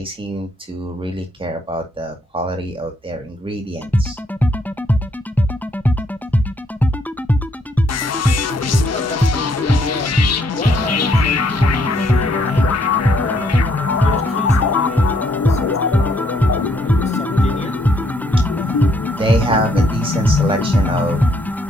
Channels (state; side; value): normal; both; correlation 0.70